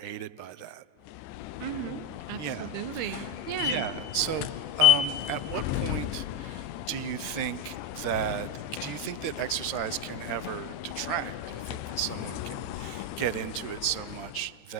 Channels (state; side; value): late; right; 13 ms